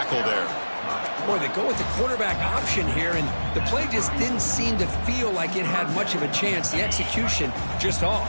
there. Boy, they go with the quarterback option here, and the play just didn't seem to feel like it had much of a chance. The execution just off.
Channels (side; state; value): both; inverted; correlation -1.00